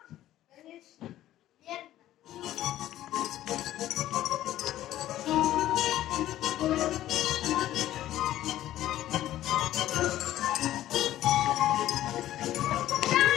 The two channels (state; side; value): quieter; right; 13.6 dB